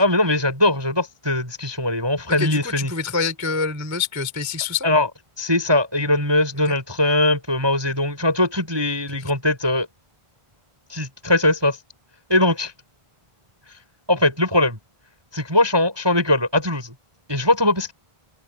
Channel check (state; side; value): late; left; 1.2 ms